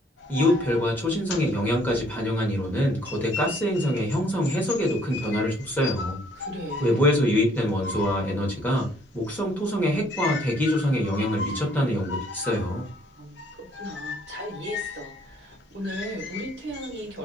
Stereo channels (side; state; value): both; normal; correlation 0.63